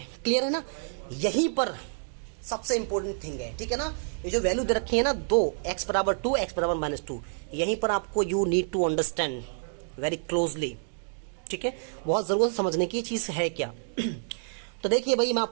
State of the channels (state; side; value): silent; left; digital silence